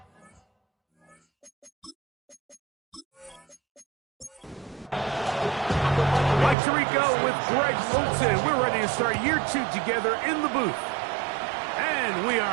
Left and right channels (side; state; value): left; drops out; at 6.6 s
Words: Mike Tirico with Greg Olsen. We're ready to start year two together in the booth. And we